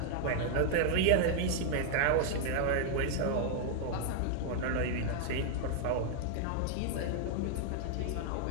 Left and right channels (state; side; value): different; both; correlation 0.00